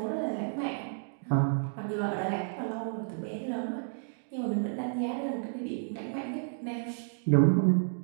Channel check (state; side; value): silent; left; digital silence